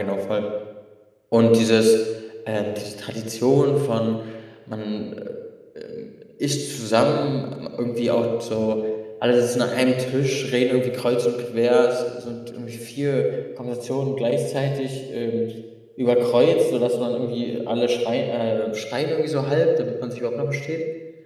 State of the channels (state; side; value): identical; both; correlation 1.00